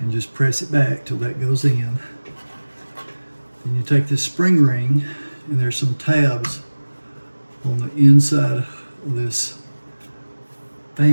just press it back till that goes in. Then you take this spring ring, and there's some tabs on the inside of this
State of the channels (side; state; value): both; inverted; correlation -1.00